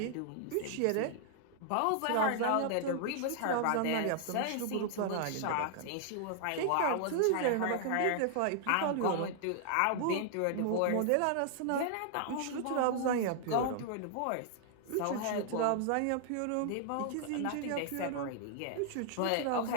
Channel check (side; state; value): both; different; correlation 0.00